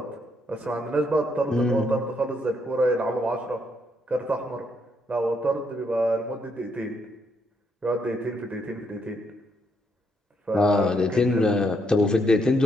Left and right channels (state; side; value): normal; both; correlation 0.75